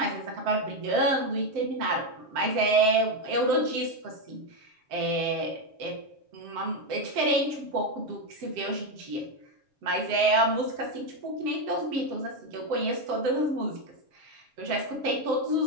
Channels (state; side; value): late; left; 7.6 ms